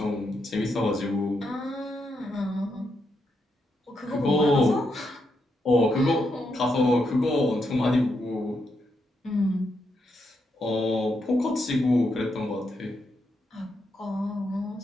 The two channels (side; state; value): both; normal; correlation 0.81